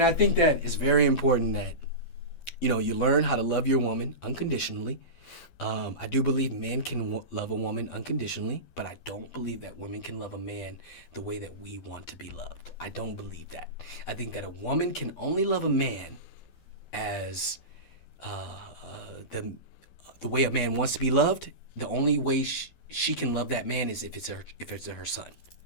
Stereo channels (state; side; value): late; right; 12 ms